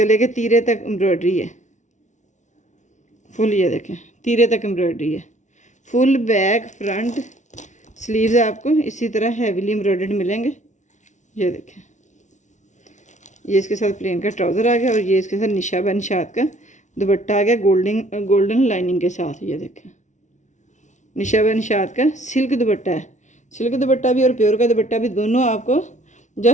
के तीरे तक एम्ब्रॉयडरी है फुल, ये देखें तीरे तक एम्ब्रॉयडरी है फुल। बैक फ्रंट स्लीव्स आपको इसी तरह हैवीली एम्ब्रॉयडर्ड मिलेंगे। ये देखें, ये इसके साथ प्लेन का ट्राउज़र आ गया और ये इसके साथ निशा व निशात का दुपट्टा आ गया गोल्डन लाइनिंग के साथ। ये देखें निशा व निशात का सिल्क दुपट्टा है, सिल्क दुपट्टा भी और प्योर का दुपट्टा भी दोनों आपको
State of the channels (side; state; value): right; late; 0.35 ms